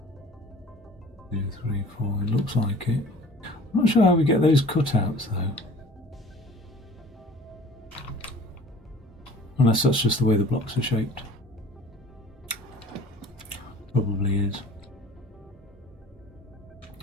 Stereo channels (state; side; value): normal; both; correlation 0.47